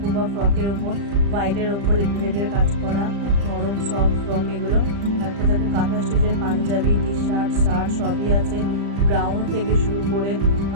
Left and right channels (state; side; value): late; left; 35 ms